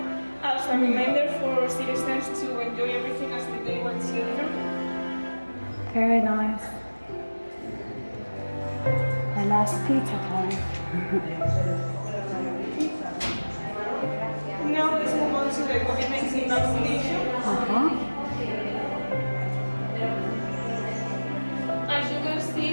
as a reminder for citizens to enjoy everything as if they were children. Very nice. last pizza time. Now let's move on to the COVID-19 vaccination. As you can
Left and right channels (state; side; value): inverted; both; correlation -1.00